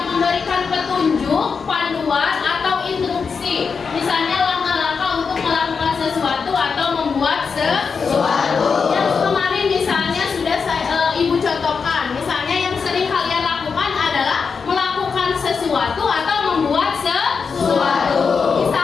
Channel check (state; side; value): quieter; right; 5.5 dB